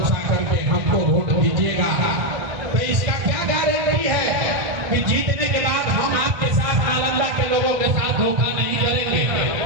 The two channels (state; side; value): late; left; 2.1 ms